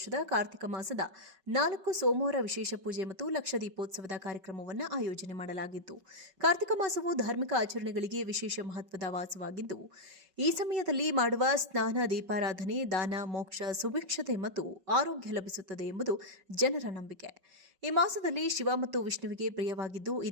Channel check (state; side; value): late; left; 5.3 ms